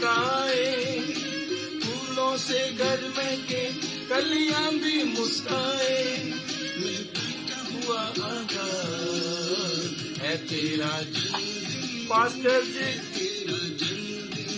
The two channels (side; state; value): both; identical; correlation 1.00